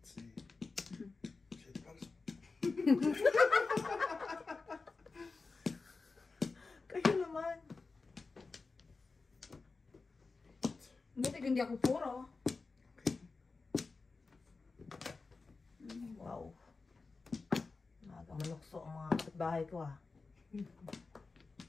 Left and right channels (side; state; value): right; quieter; 4.1 dB